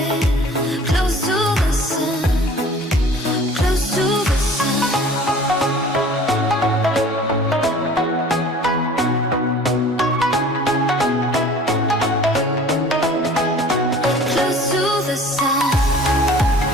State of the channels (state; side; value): normal; both; correlation 0.47